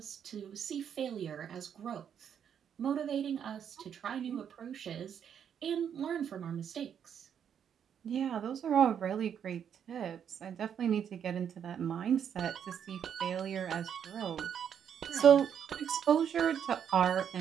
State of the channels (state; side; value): quieter; left; 8.4 dB